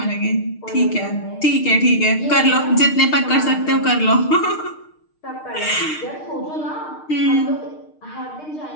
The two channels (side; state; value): right; late; 6.5 ms